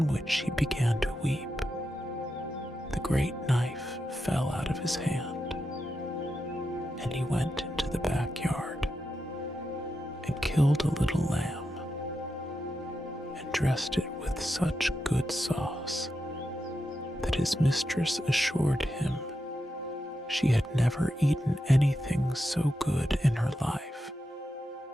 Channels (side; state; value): both; normal; correlation 0.87